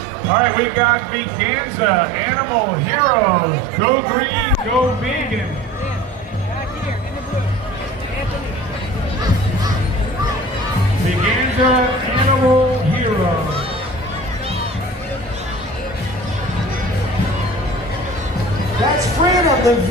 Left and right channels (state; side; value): normal; both; correlation 0.42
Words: All right, we got Veganza, Animal Heroes, Go Green, Go Vegan. Veganza, Animal Heroes. That's Freedom, the